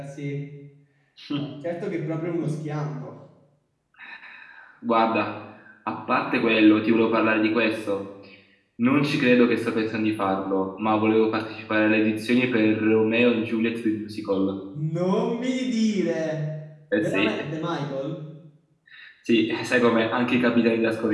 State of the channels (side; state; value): both; identical; correlation 1.00